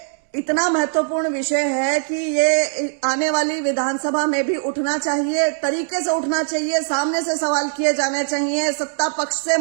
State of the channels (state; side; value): silent; left; 65 dB below the other